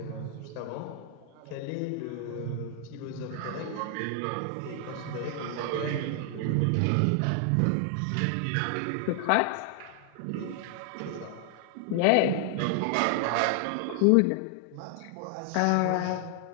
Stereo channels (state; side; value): different; both; correlation 0.00